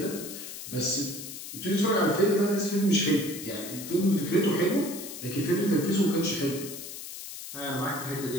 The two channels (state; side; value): noise; left; hiss, 10 dB below the sound